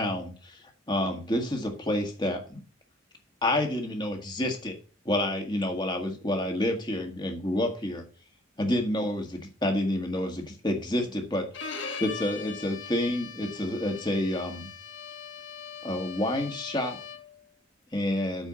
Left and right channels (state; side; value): normal; both; correlation 0.59